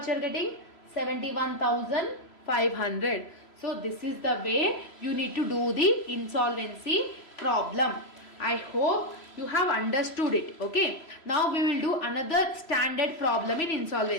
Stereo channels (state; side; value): late; right; 3.0 ms